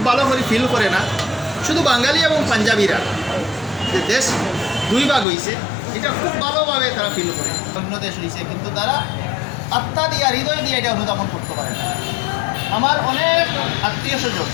ভালো করে ফিল করে না। শুধু বাঙালি এবং পাঞ্জাবিরা যে দেশ দুই ভাগ হয়েছে এটা খুব ভালোভাবে তারা ফিল করে। অন্য দেশ হয়েছে কিন্তু তারা আত্মা দিয়া হৃদয় দিয়ে এটা অনুধাবন করতে পারে না। আমার অনেক আত্মীয় স্বজন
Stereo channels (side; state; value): right; drops out; at 5.2 s